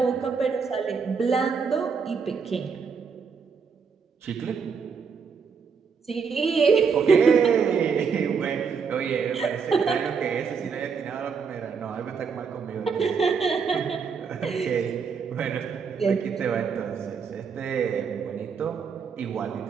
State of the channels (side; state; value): left; quieter; 5.8 dB